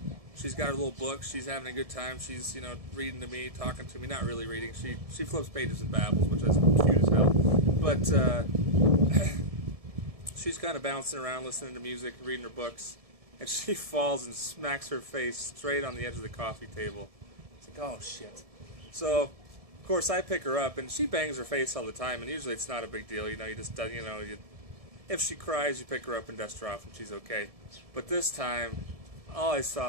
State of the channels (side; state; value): left; late; 1.7 ms